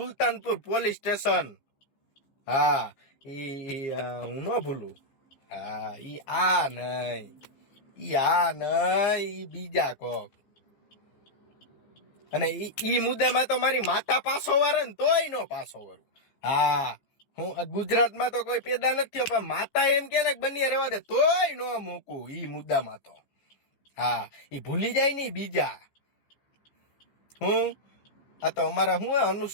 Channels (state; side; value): late; right; 15 ms